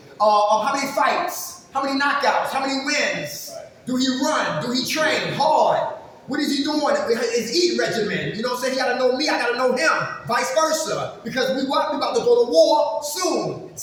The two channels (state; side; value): identical; both; correlation 1.00